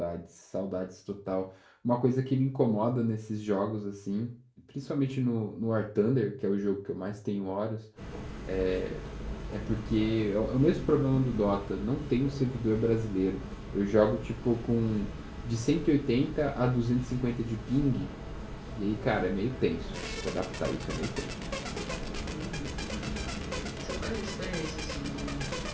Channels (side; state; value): both; identical; correlation 1.00